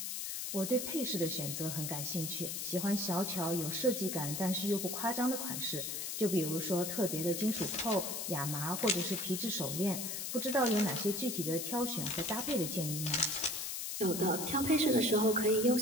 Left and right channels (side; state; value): left; noise; hiss, 4 dB below the sound